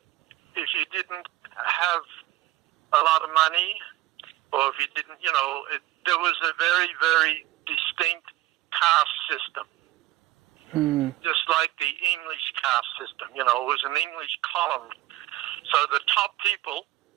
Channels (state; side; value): quieter; left; 15.9 dB